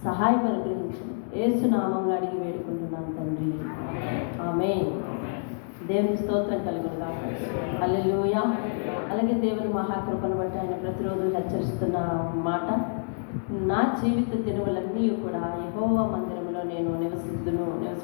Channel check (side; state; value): right; silent; 60 dB below the other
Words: సహాయం అనుగ్రహించండి. యేసు నామంలో అడిగి వేడుకుంటున్నాను తండ్రి, ఆమేన్. దేవుని స్తోత్రం కలుగుతాం. హల్లెలూయా. అలాగే దేవుని మహాకృపను బట్టి ఆయన ప్రతిరోజు హెచ్చరిస్తున్న మాట, నా జీవిత దినములన్నీ కూడా యెహోవా మందిరంలో నేను